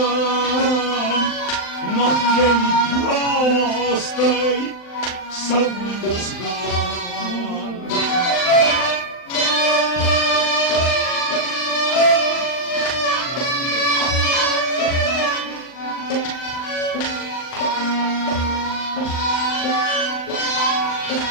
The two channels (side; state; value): right; late; 39 ms